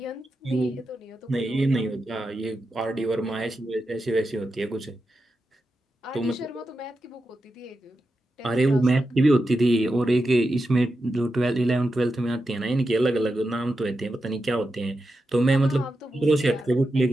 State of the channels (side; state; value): both; normal; correlation 0.89